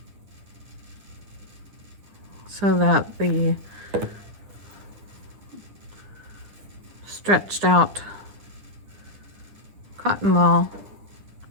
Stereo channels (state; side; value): late; left; 10 ms